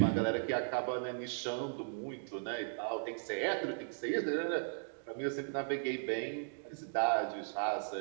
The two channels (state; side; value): silent; left; digital silence